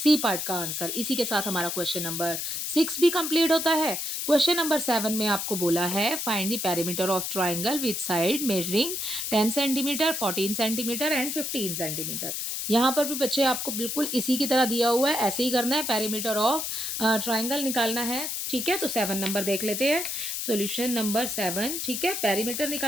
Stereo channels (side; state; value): left; noise; hiss, 3 dB below the sound